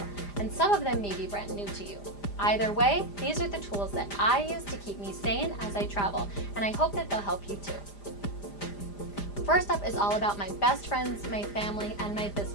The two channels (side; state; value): right; late; 5.0 ms